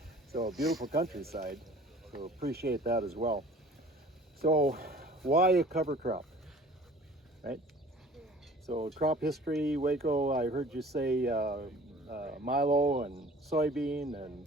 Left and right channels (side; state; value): both; normal; correlation 0.48